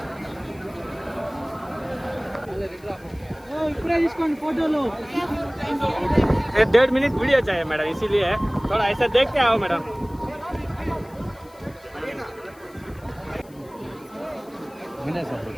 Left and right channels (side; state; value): left; noise; hiss, 27 dB below the sound